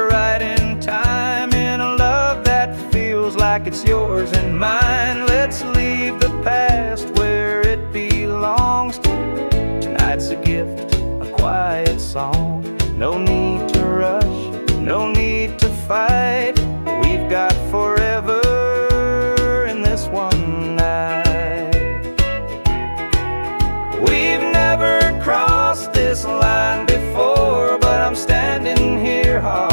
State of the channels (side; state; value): both; inverted; correlation -1.00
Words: right in time, in a love that feels like it's yours and mine. Let's leave the past where it belongs. Tonight's a gift, a quiet song. No need to rush, no need to fight. We've got forever in this one night. We've never crossed this line before, but I'm standing here